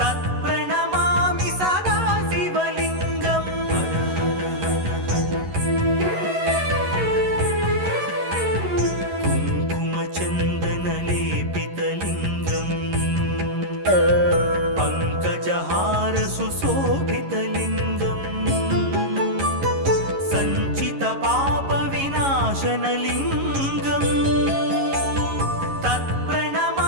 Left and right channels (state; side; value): late; left; 11 ms